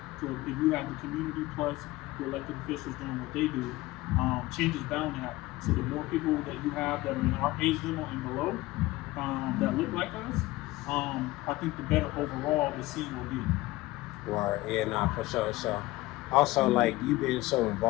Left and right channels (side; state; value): right; quieter; 19.0 dB